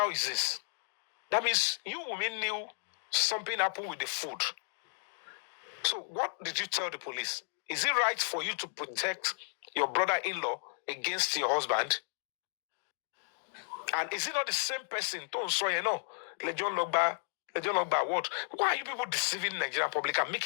is this. That means you women knew something happened with the food. So what did you tell the police? Is it right for you to protect your brother-in-law against your husband? And is it not the same person? Don't say Legion Logba. What? Why are you people deceiving the Nigerian public and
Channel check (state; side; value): silent; right; digital silence